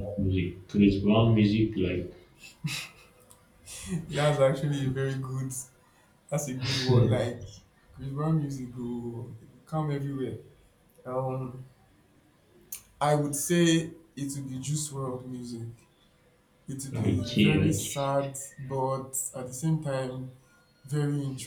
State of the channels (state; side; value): identical; both; correlation 1.00